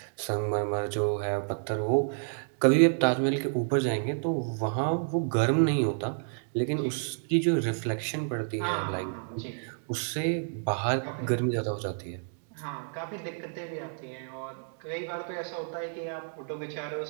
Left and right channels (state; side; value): silent; left; digital silence